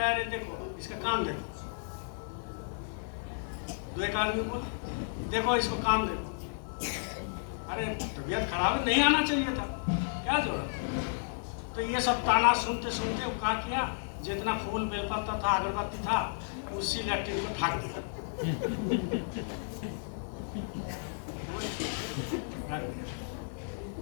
अरे देखो इसका काम देखो। दो एक आदमी बोले देखो इसको काम देखो। अरे तबीयत खराब है, नहीं आना चाहिए था, क्या जरूरत। तो ये सब ताना सुनते सुनते वो क्या किया, जितना फूल बेलपत्ता था, अगरबत्ती था, उसी लैट्रिन को ढक दिया।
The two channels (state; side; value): silent; right; digital silence